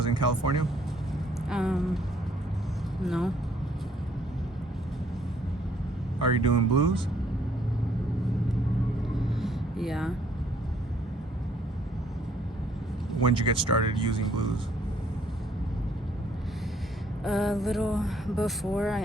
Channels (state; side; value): normal; both; correlation 0.65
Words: in California? No. Are you doing blues? Yeah. When'd you get started using blues? A little before I